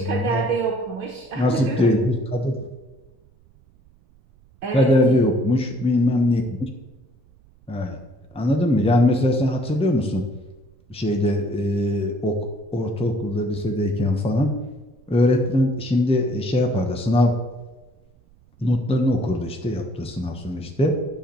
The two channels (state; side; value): noise; right; rumble, 30 dB below the sound